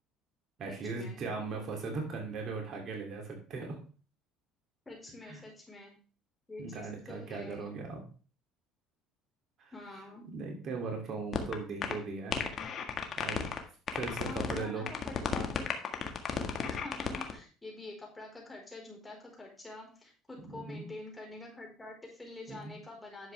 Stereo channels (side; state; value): both; normal; correlation 0.53